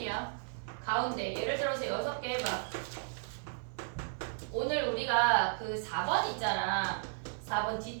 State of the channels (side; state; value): left; silent; 55 dB below the other